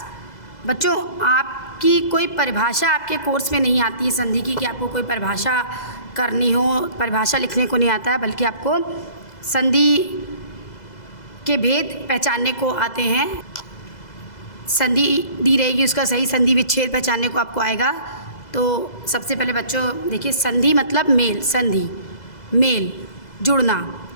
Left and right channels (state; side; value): late; right; 2.0 ms